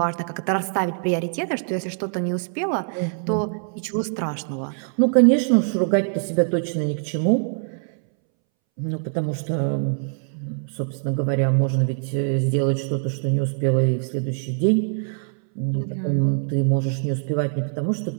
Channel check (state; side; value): silent; left; 63 dB below the other